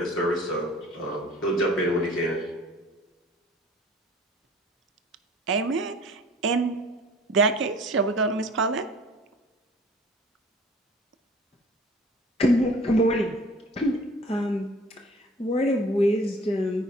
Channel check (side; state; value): both; normal; correlation 0.48